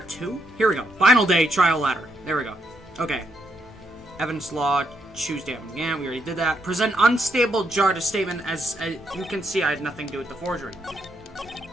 2? Here we go. Final day trial ladder. There we go. Okay. Evidence law, choose damn. Yeah, we already did that. Present unstable jar to statement as you can see I had nothing to do with the forgery.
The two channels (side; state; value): both; normal; correlation 0.77